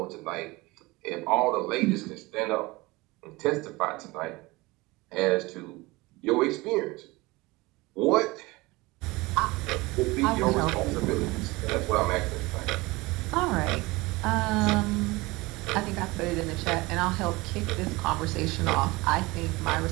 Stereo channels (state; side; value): quieter; left; 22.3 dB